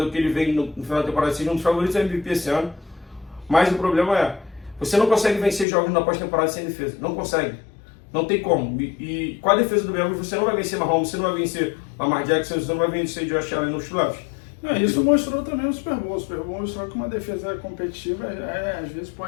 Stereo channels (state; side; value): drops out; right; at 5.7 s